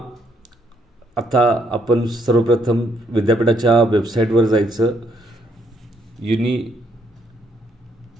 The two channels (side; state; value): both; normal; correlation 0.72